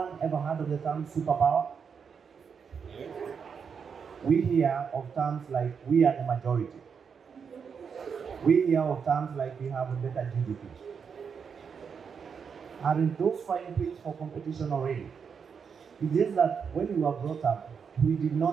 ever heard of the term superpower? We hear of terms like we are the majority. We hear of terms like we have a better GDP. Aren't those fine things for competition already? It's just that when we were brought up, we did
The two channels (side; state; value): left; quieter; 6.4 dB